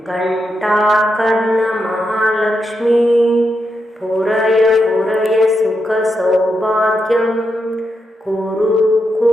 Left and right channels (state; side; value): normal; both; correlation 0.84